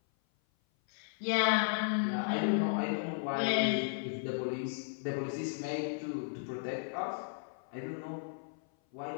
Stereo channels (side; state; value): right; silent; 54 dB below the other